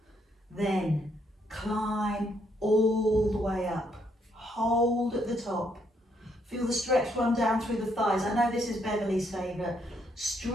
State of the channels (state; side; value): normal; both; correlation 0.73